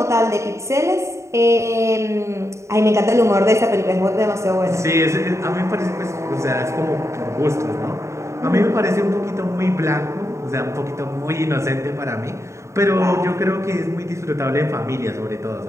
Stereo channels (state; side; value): late; left; 0.14 ms